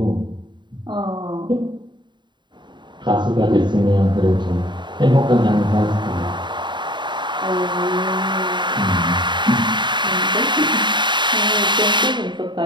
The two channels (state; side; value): late; left; 0.22 ms